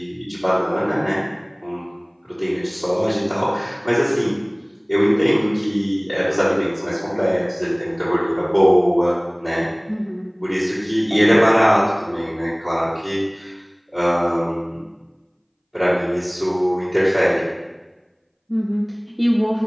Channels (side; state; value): both; identical; correlation 1.00